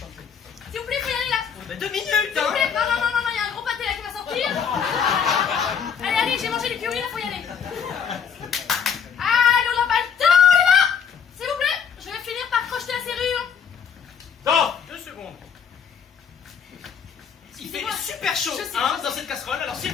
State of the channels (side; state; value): right; quieter; 7.2 dB